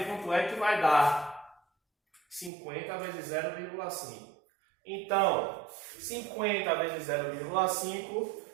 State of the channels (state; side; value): drops out; left; at 2.5 s